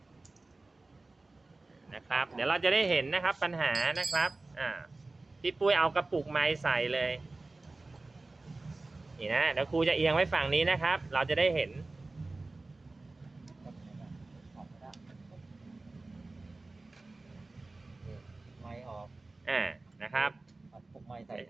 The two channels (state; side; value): quieter; left; 3.3 dB